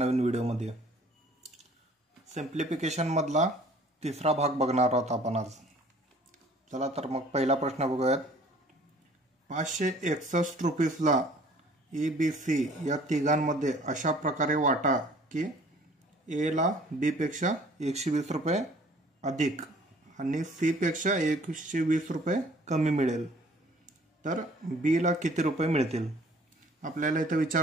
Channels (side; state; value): both; normal; correlation 0.54